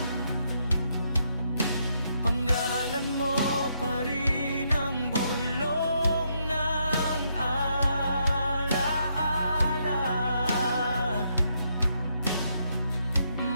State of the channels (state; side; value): inverted; both; correlation -0.77